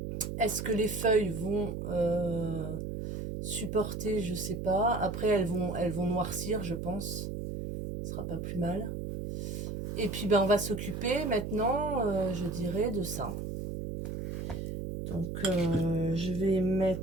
Est-ce que les feuilles vont supporter? Je sais pas. Après, elles vont noircir, je pense. Ce sera pas plus mal. Et puis, ben, on va s'occuper maintenant, je dirais, de ça. Donc, je vais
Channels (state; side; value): noise; right; hum, 5 dB below the sound